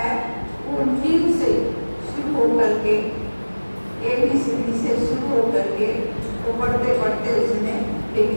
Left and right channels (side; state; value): both; inverted; correlation -1.00